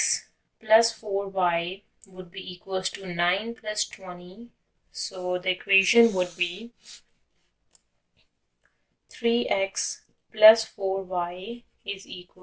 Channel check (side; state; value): both; identical; correlation 1.00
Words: plus 4y would be equals to 9 plus 20. So the equation would be 3x plus 4y is